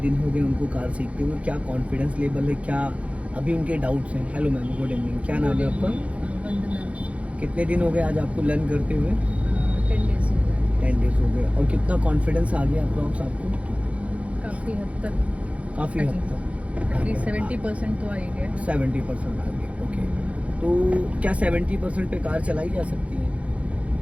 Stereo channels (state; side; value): late; left; 0.064 ms